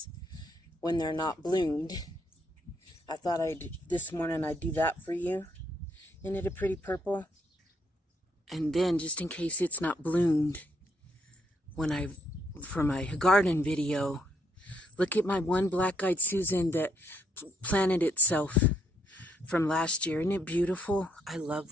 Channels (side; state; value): both; normal; correlation 0.74